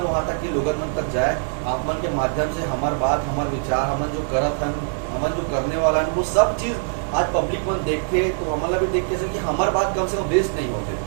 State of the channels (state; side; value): silent; left; 64 dB below the other